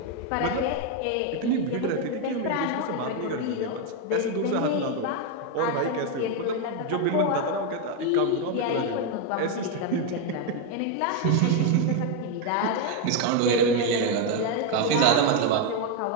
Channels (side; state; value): both; different; correlation 0.02